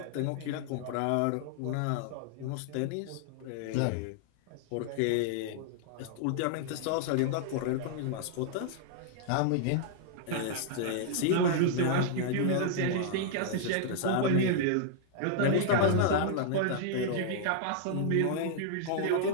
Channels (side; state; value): both; different; correlation -0.01